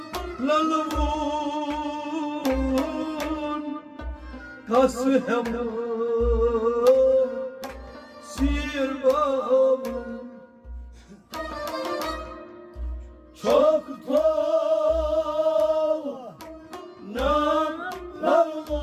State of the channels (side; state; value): both; identical; correlation 1.00